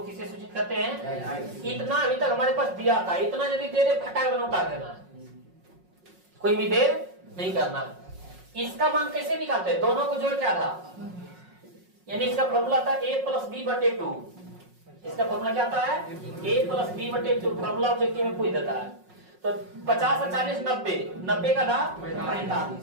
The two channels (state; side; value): late; left; 5.5 ms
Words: किसे सूचित करते हैं, इतना अभी तक हमारे पास दिया था, इतना यदि दे दे फटाक उतार देना, कोई भी देर नहीं करना। इसका मान कैसे निकालते हैं, दोनों को जोड़ क्या था, यानी इसका फॉर्मूला था a + b/2, इसका फॉर्मूला क्या था है a + b/2, फॉर्मूला ऑब्जेक्टिव में पूछ देता है। तो 50 और 40 90, 90 का था 45,